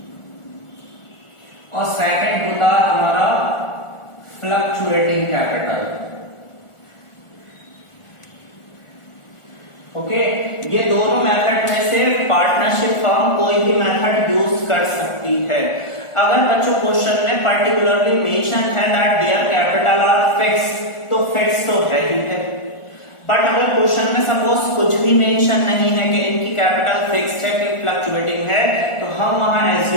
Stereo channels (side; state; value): right; late; 1.4 ms